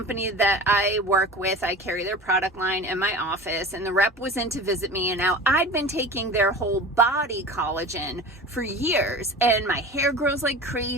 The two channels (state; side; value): normal; both; correlation 0.35